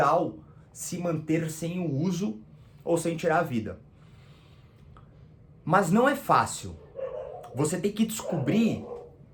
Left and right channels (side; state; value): both; identical; correlation 1.00